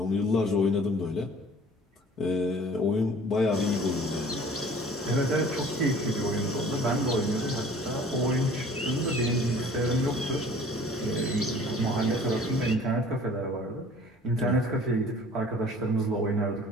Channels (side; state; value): both; normal; correlation 0.49